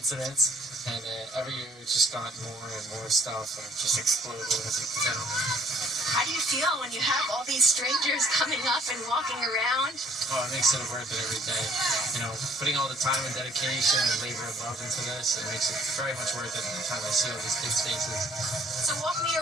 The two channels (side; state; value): both; normal; correlation 0.58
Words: And every year it's just gotten more and more stuff, and it just exploded, as you can tell. How do you feel when you have all these strangers coming up and walking around? Oh, it makes it worth it every day. You know, putting all the time and dedication and labor and love into this, it makes it very much worth it every time I see all these kids' faces. So walk me